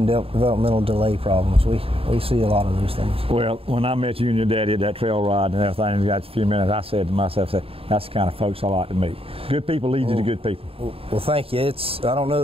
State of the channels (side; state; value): left; late; 0.27 ms